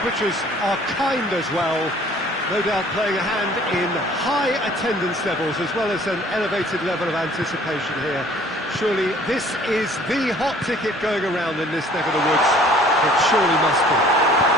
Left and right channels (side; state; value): both; normal; correlation 0.54